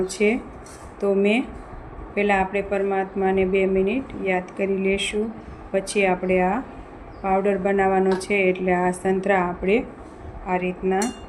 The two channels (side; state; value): both; identical; correlation 1.00